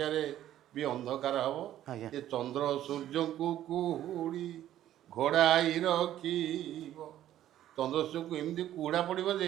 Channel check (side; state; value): left; quieter; 12.3 dB